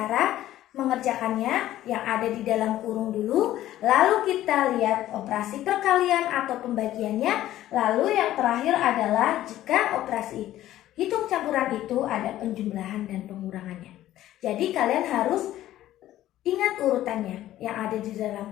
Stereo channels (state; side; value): quieter; right; 13.7 dB